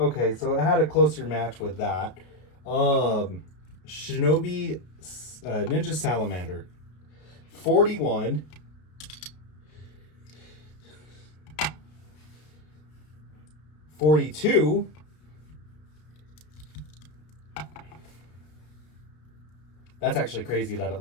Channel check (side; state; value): right; late; 32 ms